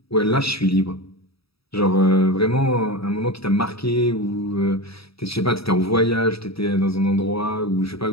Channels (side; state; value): right; late; 0.77 ms